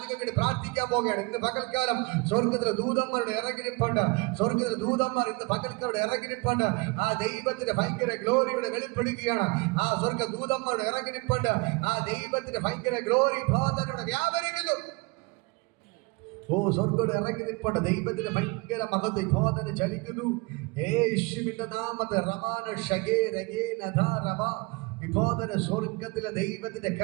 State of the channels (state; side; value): quieter; left; 27.2 dB